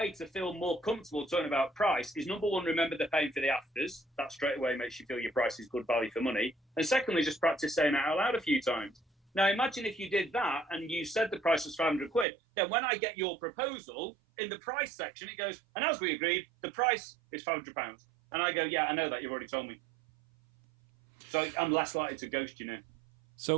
to feel more comfortable talking about price is, number one, remember they're paying for the afters. That straight away makes you feel your price is good value for money. And secondly, just practice saying it out loud a few times. Now, imagine if you did that and you said the price was 500 quid, then when I get your proposal, in the price section, it goes, and as we agreed, the price is £500. And I go, yeah, I know that, you've already told me. So I'm less likely to ghost you now.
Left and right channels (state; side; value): drops out; left; at 12.2 s